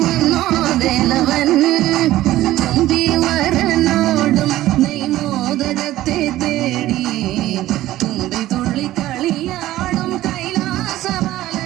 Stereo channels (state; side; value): quieter; left; 15.2 dB